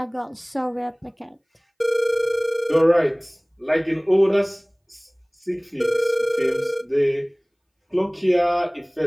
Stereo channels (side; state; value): both; identical; correlation 1.00